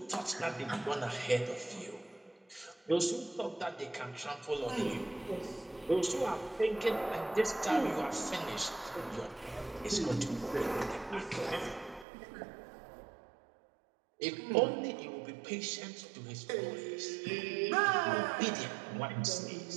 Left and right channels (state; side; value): drops out; left; at 12.1 s